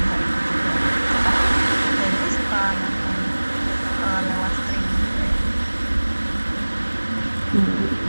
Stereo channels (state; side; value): inverted; both; correlation -1.00